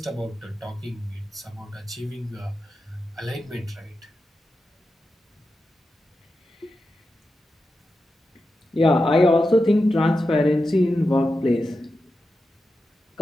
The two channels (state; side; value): normal; both; correlation 0.90